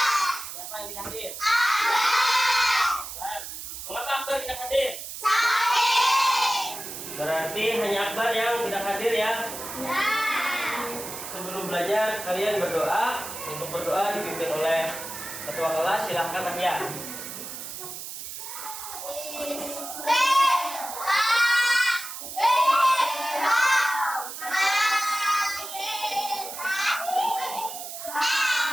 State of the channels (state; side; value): noise; right; hiss, 9 dB below the sound